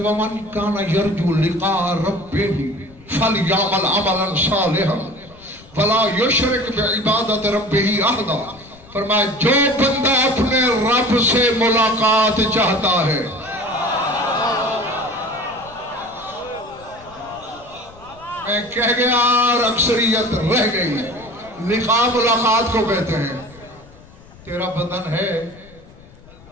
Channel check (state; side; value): noise; left; rumble, 23 dB below the sound